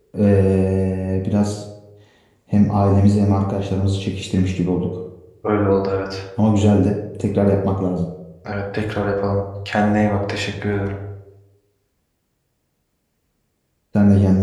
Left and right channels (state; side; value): identical; both; correlation 1.00